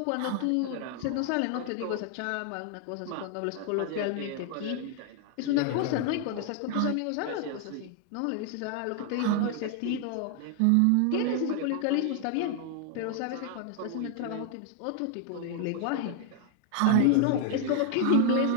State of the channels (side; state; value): both; different; correlation 0.00